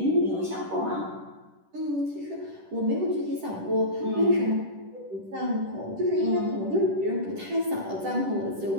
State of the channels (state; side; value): late; left; 10 ms